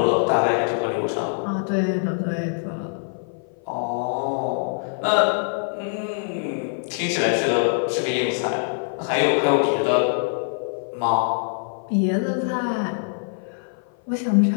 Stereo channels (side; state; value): right; silent; 56 dB below the other